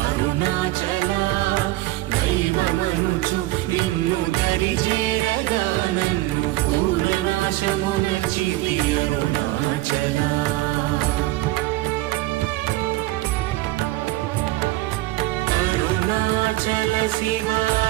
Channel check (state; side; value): quieter; left; 18.0 dB